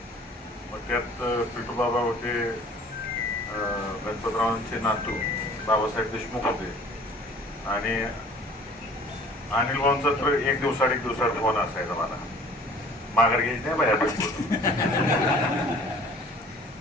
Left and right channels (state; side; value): normal; both; correlation 0.50